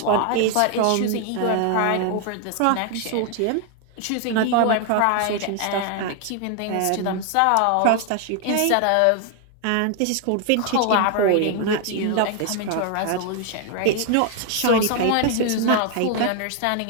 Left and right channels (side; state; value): both; different; correlation 0.00